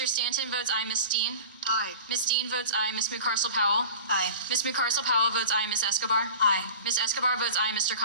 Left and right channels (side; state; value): both; inverted; correlation -0.37